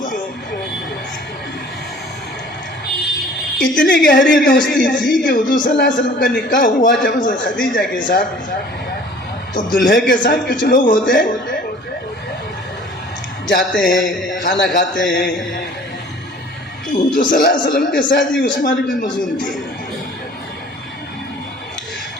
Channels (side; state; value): both; normal; correlation 0.50